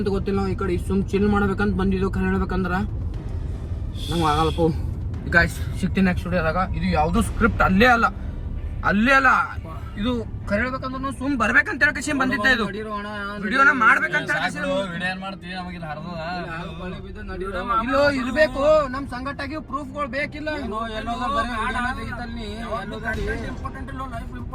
ಗೊತ್ತಿಲ್ಲ ನಾವು ಈ ಕಡೆ ಸುಮ್ ಚಿಲ್ ಮಾಡ್ಬೇಕಂತ ಬಂದಿದ್ದು ಖರೆ ಹೇಳ್ಬೇಕಂದ್ರ ನಂಗೆ ಆಗಲ್ಲಪ್ಪ ಗಾಯ್ಸ್ ಸಿಗ್ತೀನಿ ನೆಕ್ಸ್ಟ್ ವಿಡಿಯೋದಾಗ ಇದು ಯಾವ್ದು ಸ್ಕ್ರಿಪ್ಟ್ ಅಲ್ಲೇ ಅಲ್ಲ ಇದು ಖರೆ ಹೇಳ್ಬೇಕಂದ್ರೆ ಸುಮ್ ಬರ್ಬೇಕಂತ ಹೇಳಕೇಶಿ ಬಂದಿದ್ದೆ ಇದು ವಿಡಿಯೋನ ಮಾಡ್ಬೇಕಂತ ಇಲ್ಲೋ ಇರ್ಬೇಕು ನಮ್ ಸಂಘಟನೆಗೆ ಪ್ರೂಫ್ಗಳು ಬೇಕಿಲ್ಲ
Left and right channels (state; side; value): identical; both; correlation 1.00